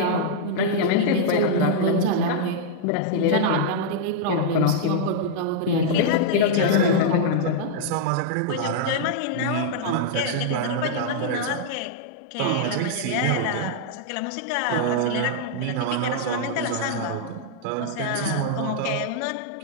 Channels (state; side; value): different; both; correlation -0.02